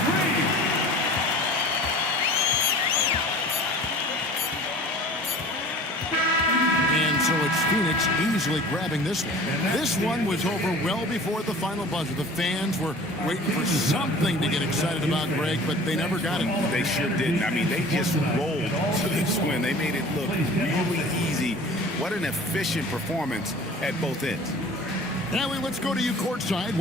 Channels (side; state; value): both; normal; correlation 0.43